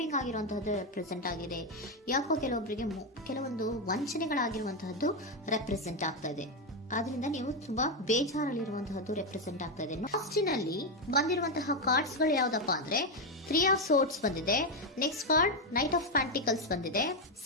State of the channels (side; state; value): both; normal; correlation 0.06